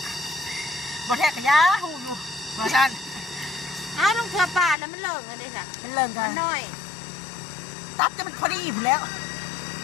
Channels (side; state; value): right; drops out; at 4.8 s